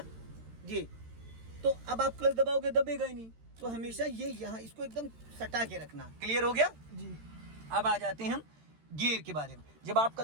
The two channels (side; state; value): left; late; 13 ms